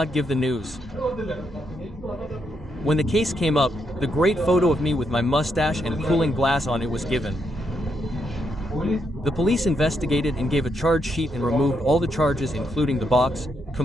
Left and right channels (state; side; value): normal; both; correlation 0.79